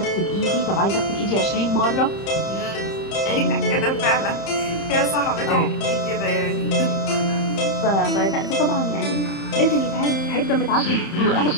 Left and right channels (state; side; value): late; right; 30 ms